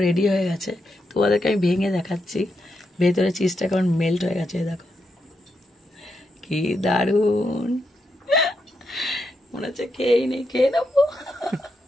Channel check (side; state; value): both; normal; correlation 0.83